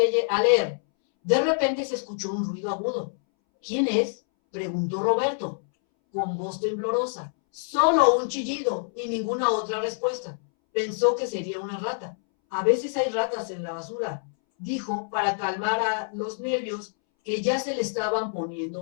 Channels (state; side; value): silent; right; 61 dB below the other